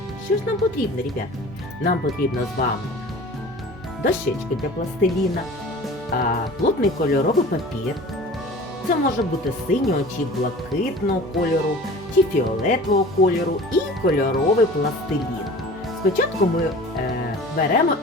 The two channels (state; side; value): normal; both; correlation 0.41